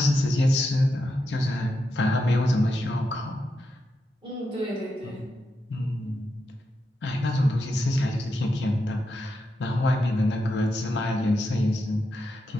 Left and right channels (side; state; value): both; normal; correlation 0.86